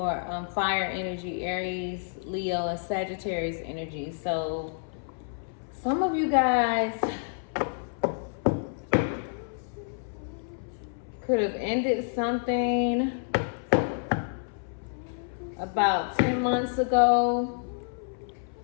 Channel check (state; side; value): silent; right; 59 dB below the other